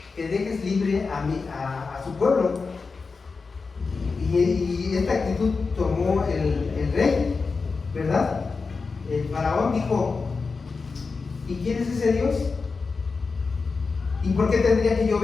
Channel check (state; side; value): quieter; right; 4.5 dB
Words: libre a su pueblo. Y esta actitud tomó el rey, ¿verdad? El faraón dijo, ¿y quién es ese Dios? ¿Y por qué tendría que yo